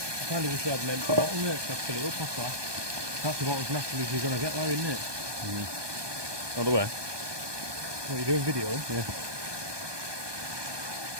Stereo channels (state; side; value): late; left; 1.2 ms